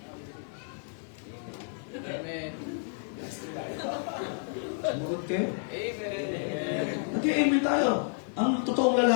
Amen. Sumagot kayo? Amen. Nag-amen tayo. Ang totoong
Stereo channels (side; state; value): right; silent; 57 dB below the other